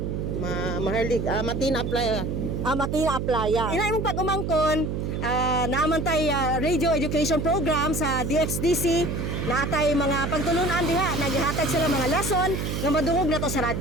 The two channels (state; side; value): noise; right; hum, 2 dB below the sound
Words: Maharlig. Matina apply. Matina Aplaya. Ina imong pag-umangkon, naaman tay radio education program sa DXDC. Naatay mga pagtulunan diha, naghihatag sila mga lesson nga madungog na to sa